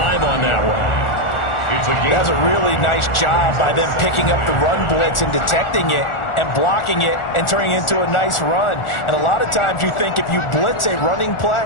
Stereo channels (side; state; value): right; late; 1.4 ms